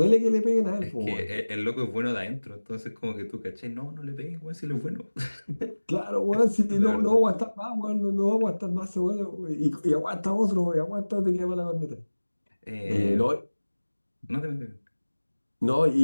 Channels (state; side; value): inverted; both; correlation -1.00